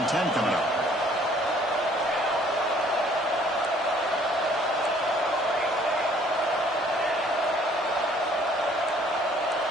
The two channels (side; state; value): both; normal; correlation 0.59